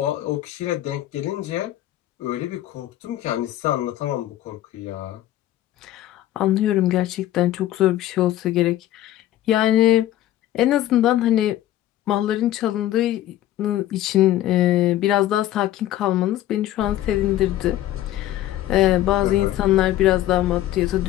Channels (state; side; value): quieter; right; 13.6 dB